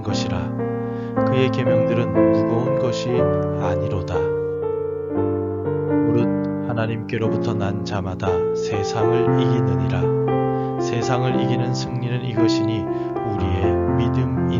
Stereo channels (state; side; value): identical; both; correlation 1.00